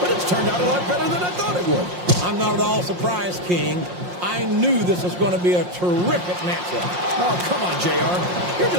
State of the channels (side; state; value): left; late; 5.6 ms